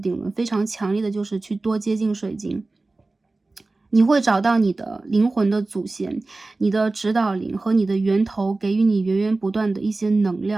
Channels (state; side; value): quieter; left; 3.3 dB